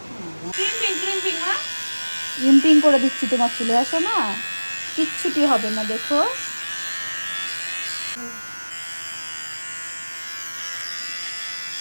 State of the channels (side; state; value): both; inverted; correlation -1.00